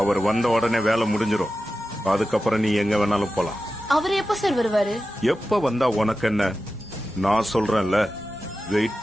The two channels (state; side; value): normal; both; correlation 0.93